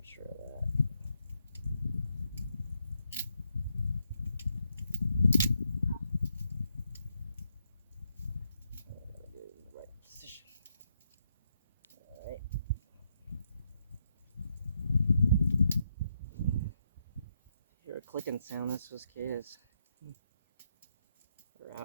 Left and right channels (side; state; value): both; inverted; correlation -0.78